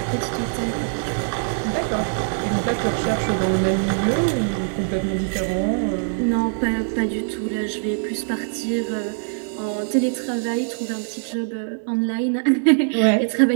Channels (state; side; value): silent; left; digital silence